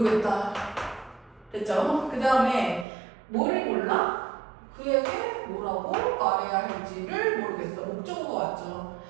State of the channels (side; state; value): left; drops out; at 2.9 s